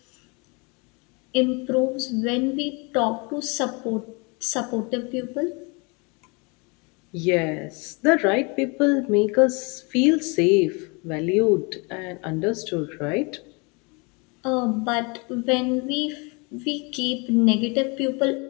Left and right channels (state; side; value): quieter; right; 30.4 dB